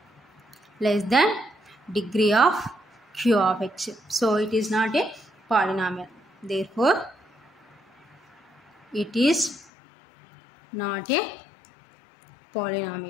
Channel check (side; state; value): right; drops out; at 9.7 s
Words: less than degree of q of x. So it is not a polynomial, therefore it is not a